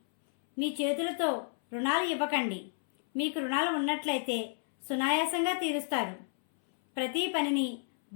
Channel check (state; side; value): silent; right; 57 dB below the other